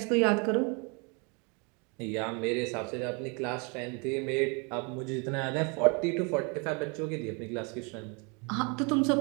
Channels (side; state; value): left; quieter; 32.9 dB